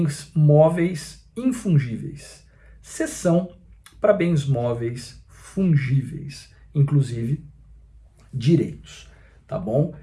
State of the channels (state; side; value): identical; both; correlation 1.00